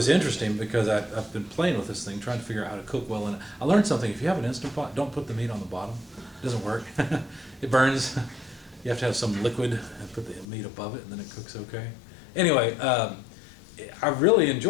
interesting because I've been playing with this thing, trying to figure out how to cook well in it. I learned something. If you have an Instant Pot, don't put the meat on the bottom. It doesn't work. It burns. You have to have some liquid and put the meat above it, and then it cooks okay. Anyway, I really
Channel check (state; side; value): drops out; right; at 10.5 s